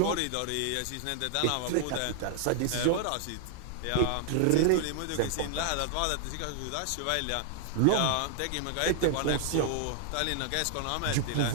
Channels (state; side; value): different; both; correlation -0.01